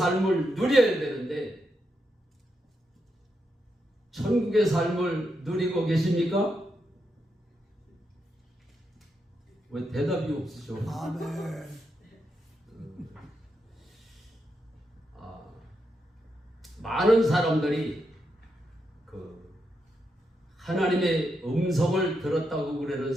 누려야 되는데 천국의 삶을 누리고 계십니까? 왜 대답이 없으셔? 아멘. 많은 사람들이 하나님의 음성을 들었다고 그러는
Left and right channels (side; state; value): both; normal; correlation 0.84